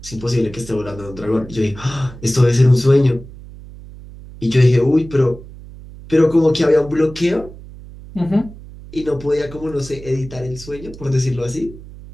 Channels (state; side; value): noise; right; hum, 17 dB below the sound